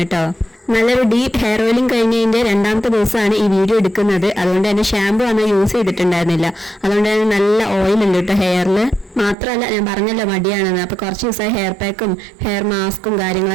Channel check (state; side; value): drops out; left; at 9.3 s